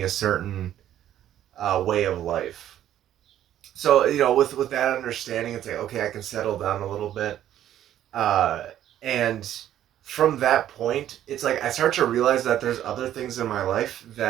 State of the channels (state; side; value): quieter; left; 11.6 dB